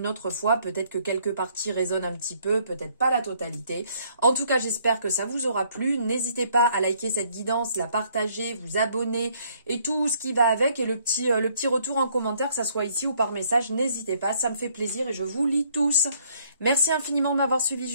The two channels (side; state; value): both; inverted; correlation -0.65